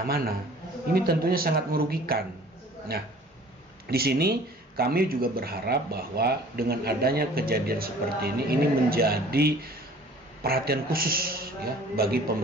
Ini tentunya sangat merugikan. Nah, di sini kami juga berharap bahwa dengan adanya kejadian seperti ini menjadi perhatian khusus ya bagi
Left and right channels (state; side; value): normal; both; correlation 0.49